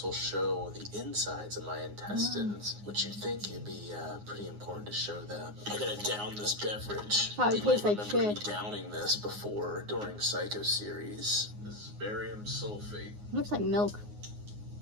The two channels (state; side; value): late; left; 9.6 ms